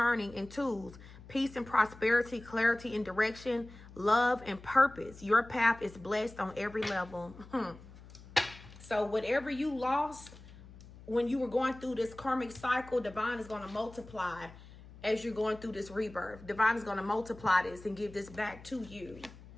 in tools. Peace and prosperity, clarity and direction, love and purpose. Your path is blessed on every level. So whatever you lost when you were going through this karmic cycle, divine is going to multiply as you're going through this rebirth. Divine is going to multiply this and give this back to you.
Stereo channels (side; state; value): left; noise; hum, 18 dB below the sound